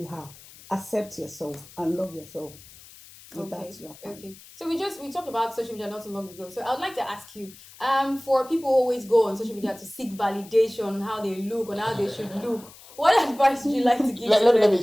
are. Accept yourself and love yourself. Okay. So we talked about social media not too long ago. So I would like to ask you, for people who always go on social media to seek validation on how they look, on how they should look, what advice would you like to give to them? Let me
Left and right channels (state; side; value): noise; left; hiss, 20 dB below the sound